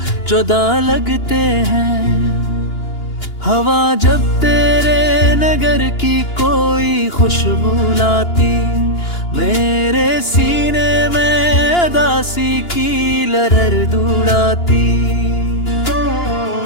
जुदा लगते हैं। हवा जब तेरे नगर की कोई खुशबू लाती, मेरे सीने में उदासी की लहर दौड़ाती।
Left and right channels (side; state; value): right; late; 2.9 ms